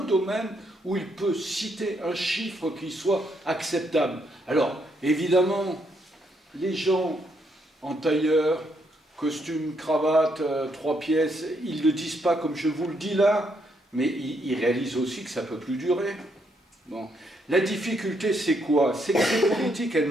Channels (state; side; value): normal; both; correlation 0.75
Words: domaine où il peut citer un chiffre qui soit acceptable. Alors, évidemment, les gens en tailleur, costume, cravate, 3 pièces, ils ne le disent pas comme je vous le dis là, mais ils réalisent aussi que ça ne peut plus durer. Bon. La difficulté, c'est quoi? C'est que ces politiques, elles